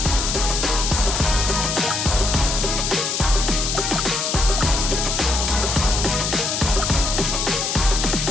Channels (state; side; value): noise; left; hiss, 1 dB below the sound